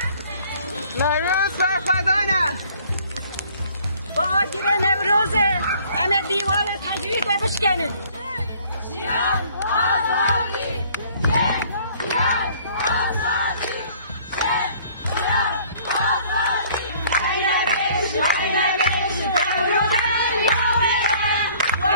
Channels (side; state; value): both; inverted; correlation -0.56